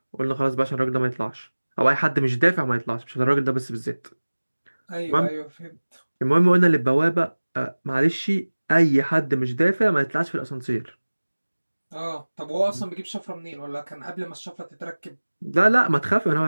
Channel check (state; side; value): inverted; both; correlation -1.00